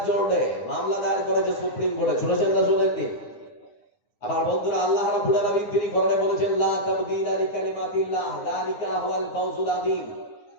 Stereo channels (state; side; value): late; right; 9.7 ms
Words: জন্য মামলা দায়ের করেছে সুপ্রিম কোর্টে। শুনেছেন না শুনেননি? আবার বন্ধুরা আল্লাহ রাব্বুল আলামিন তিনি কোরআনে বলেছেন লা তাবদীলা লিকালিমাতিল্লাহ যালিকা হুয়াল ফাওজুল আযীম।